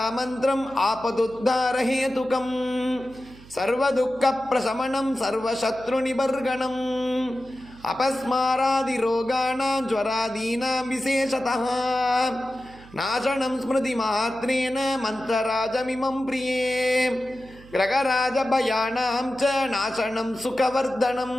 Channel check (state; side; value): noise; right; hum, 21 dB below the sound